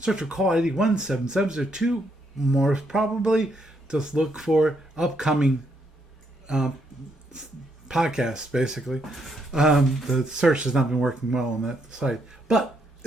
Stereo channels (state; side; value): normal; both; correlation 0.75